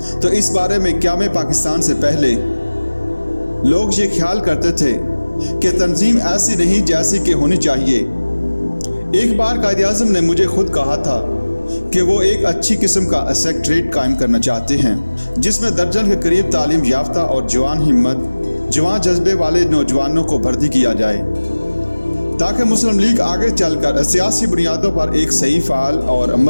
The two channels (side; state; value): both; inverted; correlation -1.00